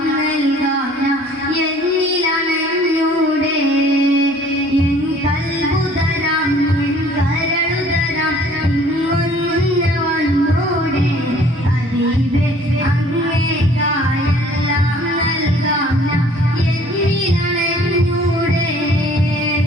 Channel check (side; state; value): both; normal; correlation 0.54